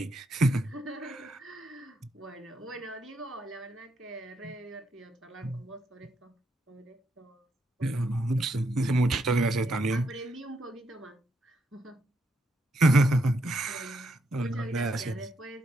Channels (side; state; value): both; normal; correlation 0.78